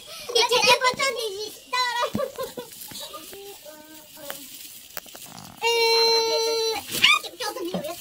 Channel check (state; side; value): identical; both; correlation 1.00